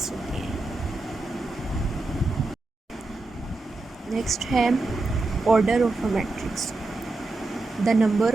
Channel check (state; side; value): quieter; left; 3.2 dB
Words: होते हैं। नेक्स्ट है order of a matrix. The number